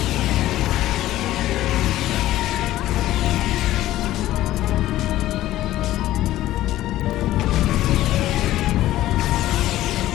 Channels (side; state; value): right; quieter; 14.7 dB